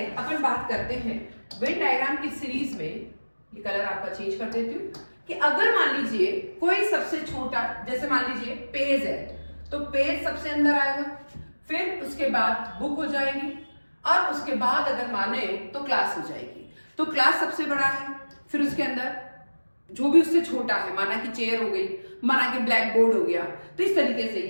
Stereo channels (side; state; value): both; inverted; correlation -1.00